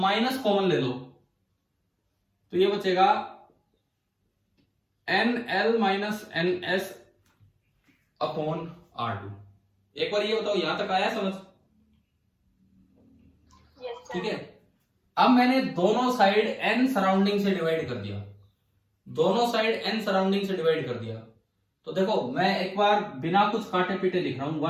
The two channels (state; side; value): identical; both; correlation 1.00